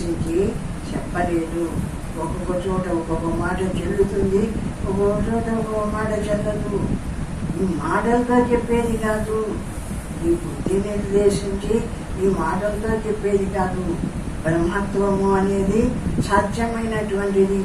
చెప్పలేదు. ఒక్కొక్క చోట ఒక్కొక్క మాట చెల్లుతుంది, ఒక్కొక్క చోట ఒక్కొక్క మాట చెల్లదు. ఈ మాటలతో చెప్పేది కాదు, ఈ బుద్ధి నిర్దేశించి ఈ మాటలతో చెప్పేది కాదు. బ్రహ్మత్వము అనేది సత్యమైనటువంటిది.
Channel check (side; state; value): both; identical; correlation 1.00